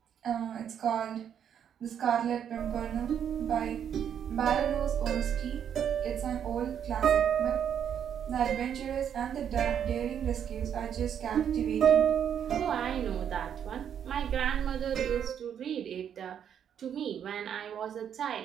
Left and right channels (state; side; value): quieter; left; 8.8 dB